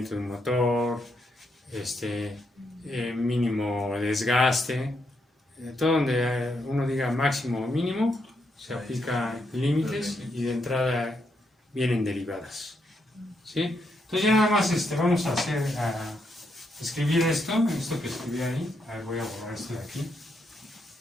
de un motor, mínimo desgaste, todo donde uno diga máximo o mínimo, se aplica límites y de entrada vienen derivadas. ¿Sí? Entonces ya nada más vamos a escribir esto que escribí ahí. A ver, voy a borrar esto de aquí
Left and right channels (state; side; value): normal; both; correlation 0.79